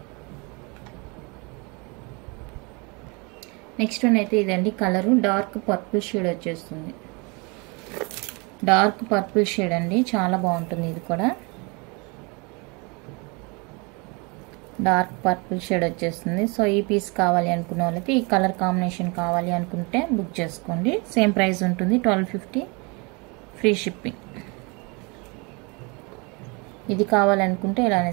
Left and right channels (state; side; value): quieter; left; 29.7 dB